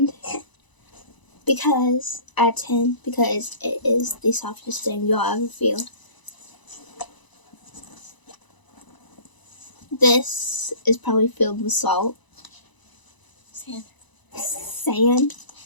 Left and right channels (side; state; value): right; late; 1.0 ms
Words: because at 10 because it is the softest thing you'll ever feel. This is probably filled with salt. Sand.